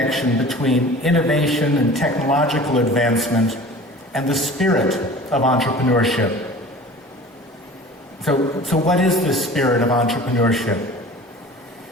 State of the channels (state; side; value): normal; both; correlation 0.42